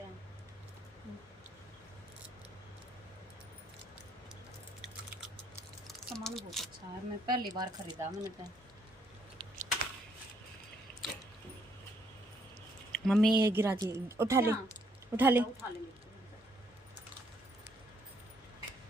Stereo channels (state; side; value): normal; both; correlation 0.70